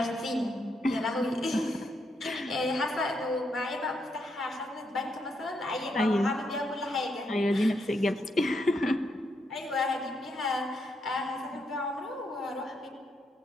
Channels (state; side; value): normal; both; correlation 0.79